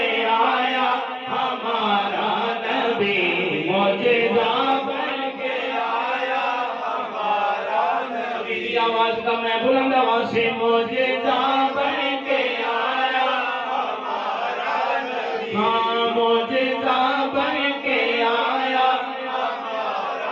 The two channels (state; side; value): identical; both; correlation 1.00